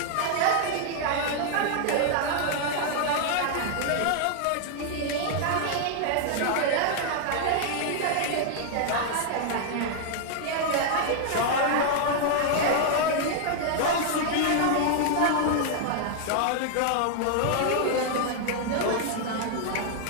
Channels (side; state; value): both; different; correlation 0.00